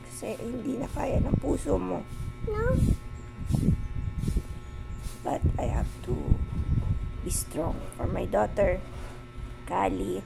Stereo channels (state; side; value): identical; both; correlation 1.00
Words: Kasi hindi na kaya ng puso mo. No? But I have to be strong for my daughter, Kali.